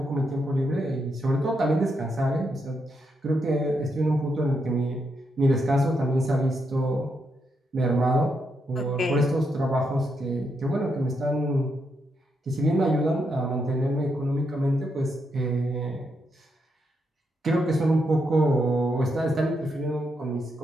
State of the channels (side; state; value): both; normal; correlation 0.81